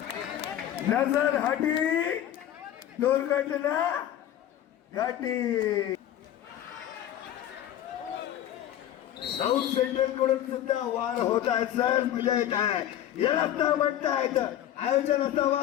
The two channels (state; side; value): quieter; right; 11.6 dB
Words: नजर हटी दुर्घटना घटी साऊथ सेंट्रल कडून सुद्धा वार होत आहे सर मजा येत आहे याला तर म्हणता येतं आयोजन